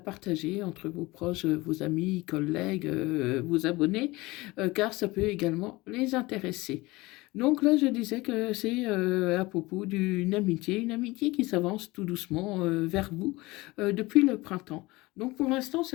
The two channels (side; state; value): right; quieter; 21.4 dB